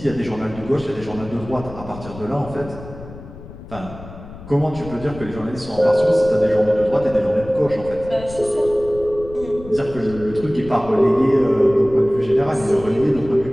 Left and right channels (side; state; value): left; noise; rumble, 15 dB below the sound